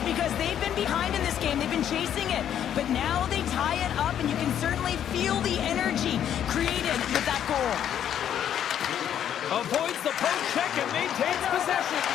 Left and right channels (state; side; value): quieter; right; 9.9 dB